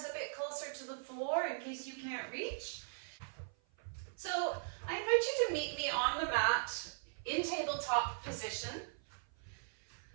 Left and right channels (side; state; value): left; silent; 52 dB below the other